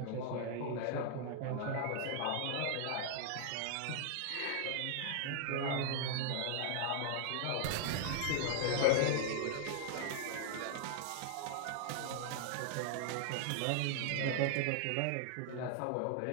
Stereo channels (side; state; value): both; different; correlation 0.00